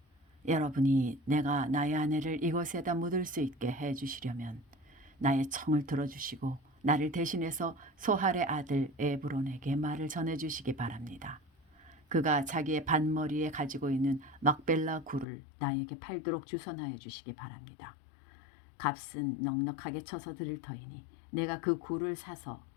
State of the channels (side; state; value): right; drops out; at 15.2 s